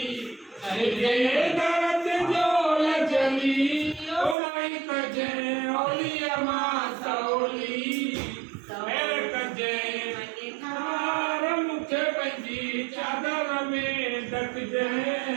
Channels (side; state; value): left; drops out; at 4.4 s